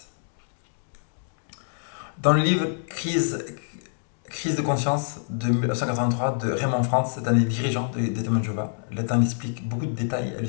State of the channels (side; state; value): right; silent; digital silence